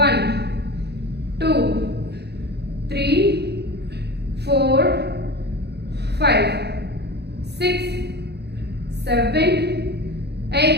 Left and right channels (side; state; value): left; late; 0.48 ms